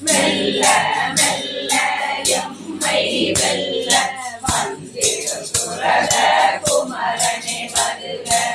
மெல்ல மெல்ல எம்மை வெல்ல வந்திடும் சுரத குமரனே வருக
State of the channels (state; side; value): identical; both; correlation 1.00